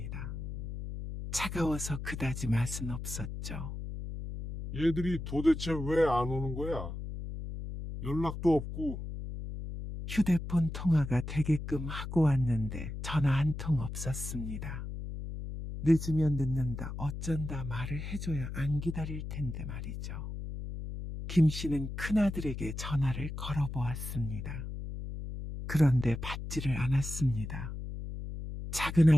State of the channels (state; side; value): noise; left; hum, 7 dB below the sound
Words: 차가워서 그다지 맛은 없었죠. 얘들이 도대체 왜 안 오는 거야? 연락도 없고. 휴대폰 통화가 되게끔 하고 왔는데 전화 한 통 없었습니다. 늦으면 늦는다 어쩐다 말을 해줘야 안 기다릴 텐데 말이죠. 김 씨는 큰아들에게 전화를 걸어보았습니다. 그런데 받지를 않았습니다. 작은